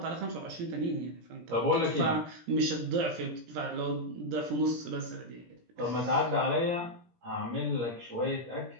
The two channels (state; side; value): late; left; 17 ms